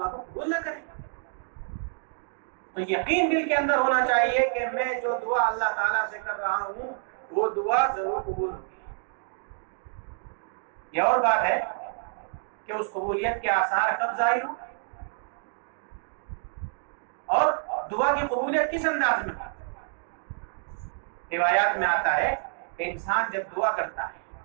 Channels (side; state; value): left; silent; 59 dB below the other